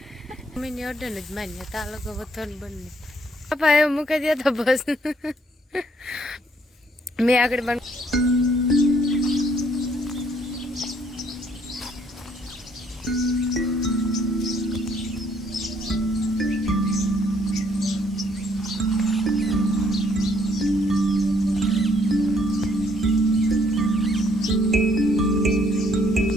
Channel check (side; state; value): both; normal; correlation 0.66